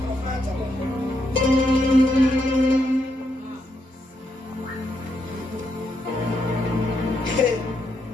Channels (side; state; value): both; normal; correlation 0.79